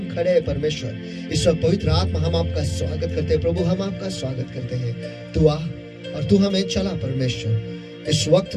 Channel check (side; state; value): both; identical; correlation 1.00